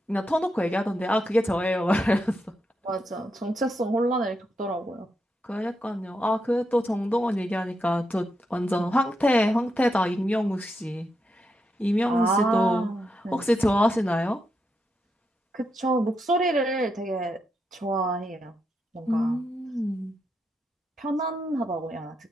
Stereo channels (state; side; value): normal; both; correlation 0.83